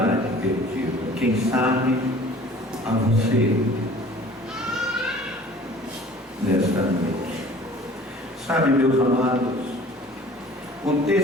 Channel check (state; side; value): normal; both; correlation 0.48